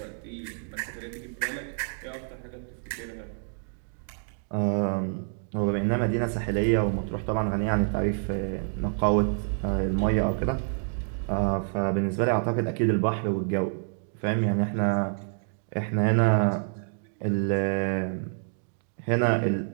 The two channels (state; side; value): silent; left; digital silence